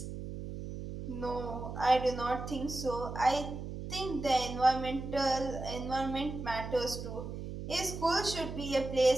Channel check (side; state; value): right; noise; hum, 8 dB below the sound